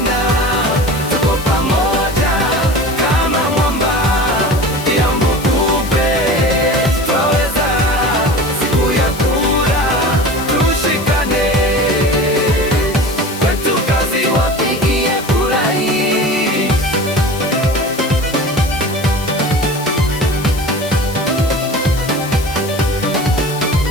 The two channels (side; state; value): left; noise; hiss, 14 dB below the sound